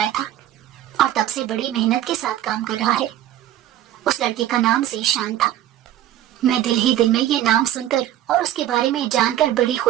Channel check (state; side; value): quieter; left; 12.5 dB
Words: تھا اور تب سے بڑی محنت کے ساتھ کام کر رہا ہے. اس لڑکے کا نام ذیشان تھا. میں دل ہی دل میں یہ نام سن کر اور اس کے بارے میں جان کر بڑی